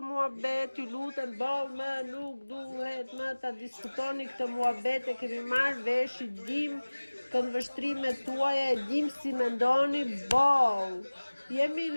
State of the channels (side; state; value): both; inverted; correlation -1.00